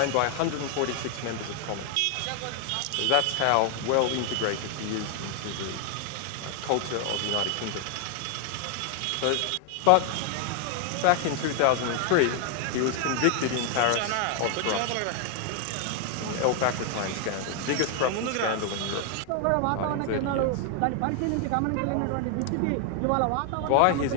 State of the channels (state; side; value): different; both; correlation 0.00